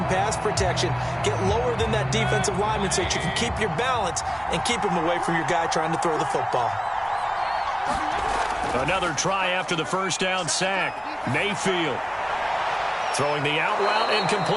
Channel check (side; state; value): both; identical; correlation 1.00